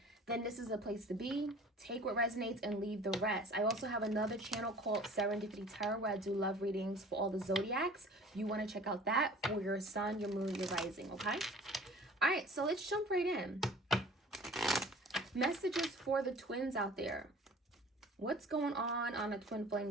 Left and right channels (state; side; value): normal; both; correlation 0.46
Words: then this is a place to be. Take what resonates and leave the rest. I also have another channel called Serendipity Tarot where I do love readings for all the zodiacs. You want to check out that for your sun, your moon, your rising, okay? All right, so let's jump right in. Messages for the twins out there. What's going on a twin